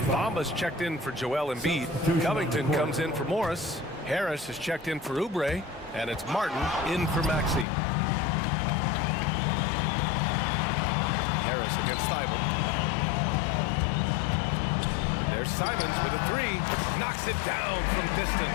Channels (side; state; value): right; drops out; at 7.7 s